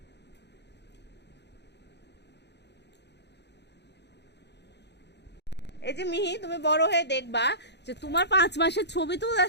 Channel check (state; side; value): late; right; 0.50 ms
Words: এই যে মিহি, তুমি বড় হয়ে দেখবা যে তোমার 5 মাসের ছবি